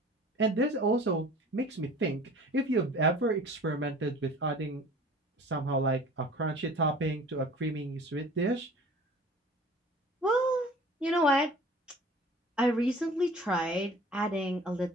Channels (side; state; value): both; normal; correlation 0.45